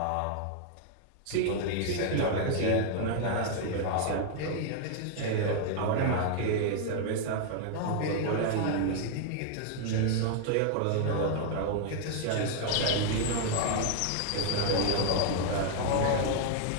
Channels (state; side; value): different; both; correlation 0.00